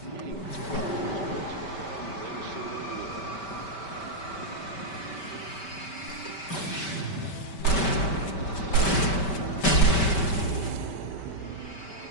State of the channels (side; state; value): right; late; 5.2 ms